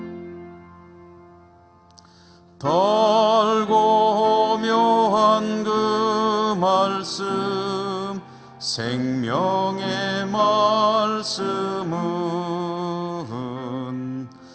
달고 묘한 그 말씀, 생명의 말씀은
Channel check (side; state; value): both; identical; correlation 1.00